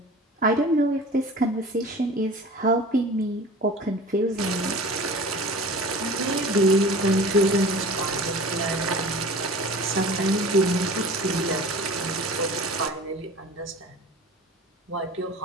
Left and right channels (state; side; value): normal; both; correlation 0.40